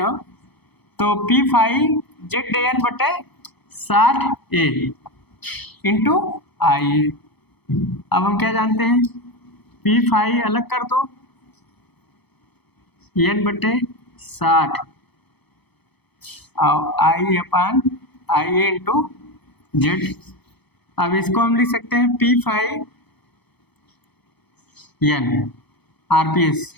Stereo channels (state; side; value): late; right; 0.99 ms